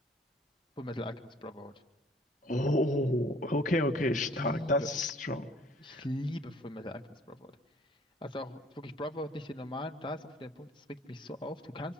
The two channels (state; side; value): normal; both; correlation 0.56